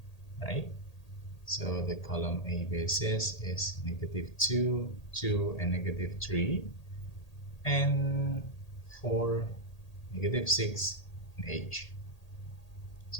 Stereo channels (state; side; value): late; right; 1.8 ms